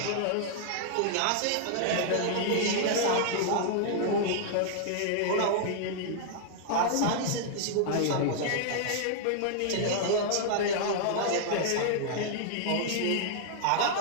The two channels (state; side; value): different; both; correlation -0.01